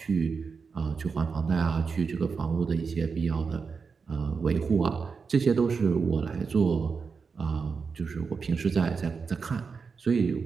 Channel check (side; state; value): left; quieter; 5.3 dB